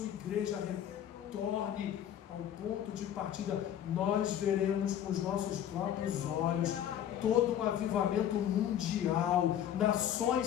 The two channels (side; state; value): right; quieter; 10.3 dB